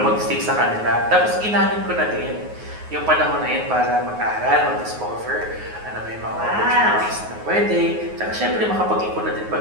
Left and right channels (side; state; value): left; late; 9.5 ms